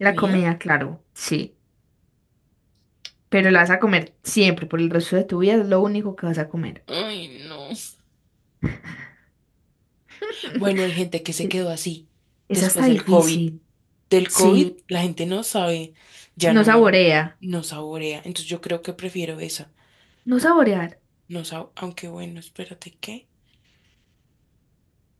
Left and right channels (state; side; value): identical; both; correlation 1.00